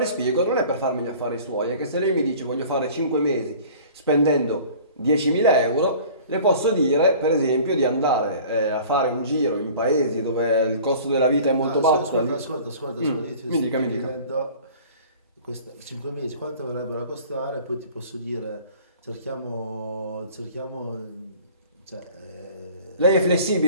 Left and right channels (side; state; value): both; inverted; correlation -0.46